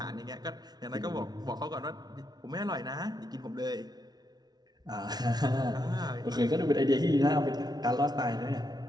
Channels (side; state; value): left; late; 0.19 ms